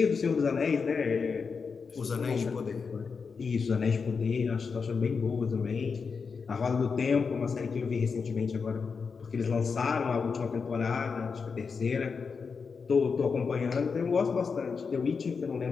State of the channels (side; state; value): right; quieter; 5.4 dB